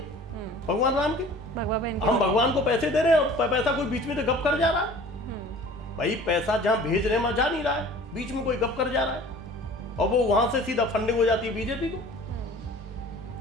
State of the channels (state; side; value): normal; both; correlation 0.46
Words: भगवान राम की। हम भगवान को पैसे दे रहे हैं और पैसा कोई बीच में तो गप कर जा रहा है। भाई पैसा जहां भेज रहे हैं वहां जा नहीं रहा है, बीच में कोई गप कर जा रहा है और वो वहां से सीधा फंडिंग हो जाती है बीजेपी को।